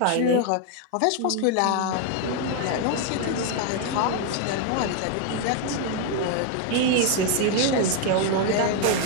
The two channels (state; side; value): different; both; correlation 0.01